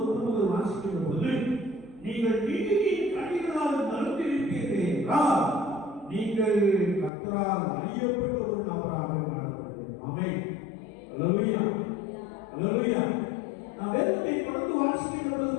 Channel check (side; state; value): right; drops out; at 7.1 s